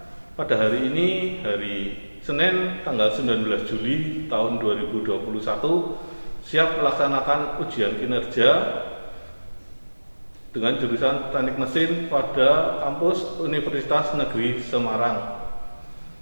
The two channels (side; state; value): both; inverted; correlation -1.00